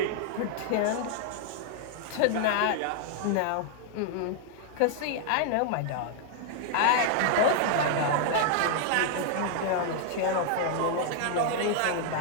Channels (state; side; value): different; both; correlation 0.00